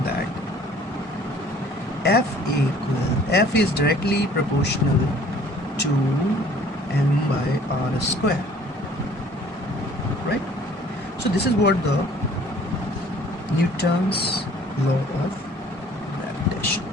that F is directly proportional to m by R square, right? So this is what the Newton's law of gravitation,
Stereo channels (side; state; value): right; noise; hum, 28 dB below the sound